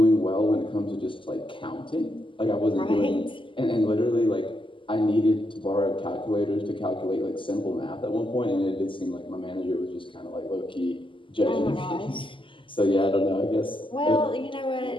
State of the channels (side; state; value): right; late; 0.25 ms